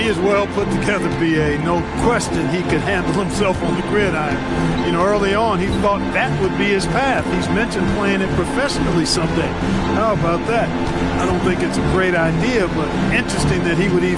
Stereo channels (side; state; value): both; identical; correlation 1.00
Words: is well put together, B.A. No question he could handle himself on the gridiron. You know, early on, he thought that would be his path. He's mentioned playing it professionally someday. How about that? I don't think it's a great idea, but interesting that he would